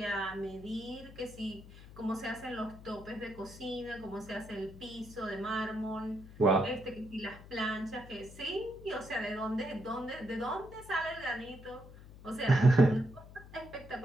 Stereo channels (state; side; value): noise; left; hum, 17 dB below the sound